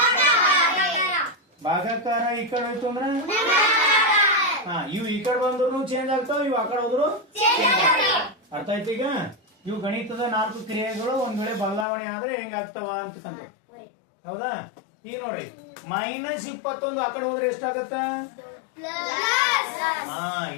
ಭಾಗಾಕಾರ ಈ ಕಡೆ ಹೋಯ್ತು ಅಂದ್ರೆ, ಇವು ಈ ಕಡೆ ಬಂದ್ರು ಚೇಂಜ್ ಆಗ್ತಾವ, ಇವು ಆ ಕಡೆ ಹೋದ್ರು. ಅರ್ಥ ಆಯ್ತು? ಈಗ ಇವು ಗಣಿತದ 4 ಕ್ರಿಯೆಗಳು ಒಂದ್ ವೇಳೆ ಬದಲಾವಣೆ ಆದ್ರೆ ಹೆಂಗಾಗ್ತಾವ ಅಂತಕ್ಕಂಥ. ಹೌದಾ? ಈಗ ನೋಡಿ, ಮೈನಸ್ 21 ಆ ಕಡೆ ಹೋದ್ರೆ ಎಷ್ಟಾಗತ್ತ? =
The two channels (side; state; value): right; drops out; at 11.9 s